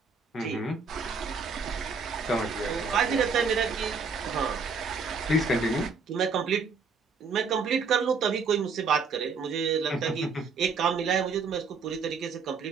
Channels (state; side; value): quieter; left; 4.8 dB